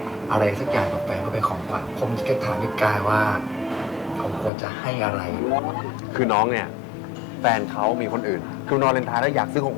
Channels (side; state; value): right; drops out; at 4.5 s